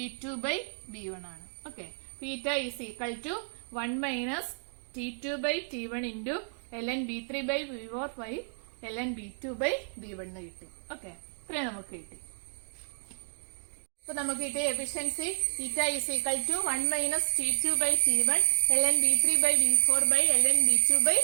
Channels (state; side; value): silent; left; digital silence